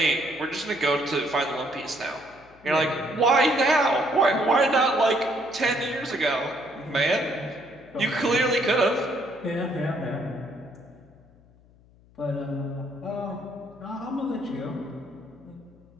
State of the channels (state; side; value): noise; left; hum, 28 dB below the sound